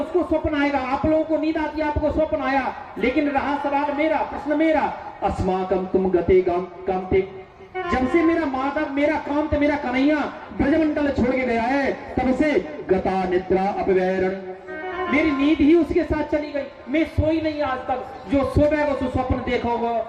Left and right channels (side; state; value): both; identical; correlation 1.00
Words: स्वप्न आएगा। आप लोगों को नींद आती है, आपको स्वप्न आया, लेकिन रहा सवाल मेरा, प्रश्न मेरा, अस्माकं तुम गते कांते, जब से मेरा माधव, मेरा कांत, मेरा कन्हैया ब्रजमंडल छोड़ के गया है, तब से गता निद्रा अपवैरण, मेरी नींद ही उसके साथ चली गई। मैं सोई नहीं आज तक, जो सोएगा तो स्वप्न देखोगा,